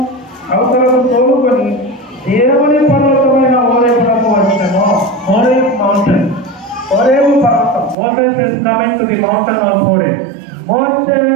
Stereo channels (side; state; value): left; drops out; at 8.0 s